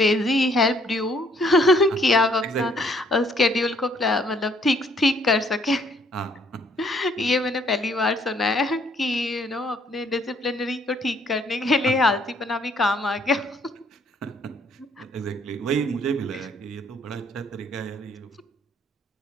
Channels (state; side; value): normal; both; correlation 0.65